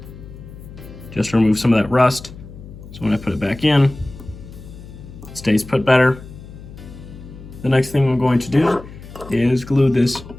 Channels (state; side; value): noise; left; hum, 16 dB below the sound